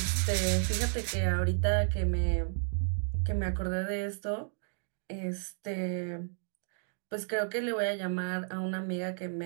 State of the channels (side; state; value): left; silent; digital silence